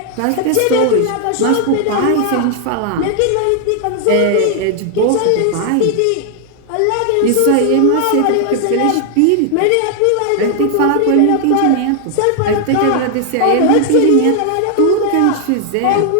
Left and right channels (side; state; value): both; different; correlation 0.00